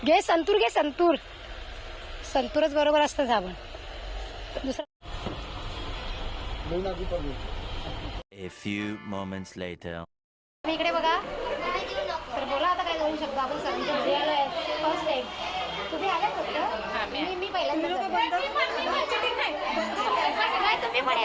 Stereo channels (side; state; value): both; identical; correlation 1.00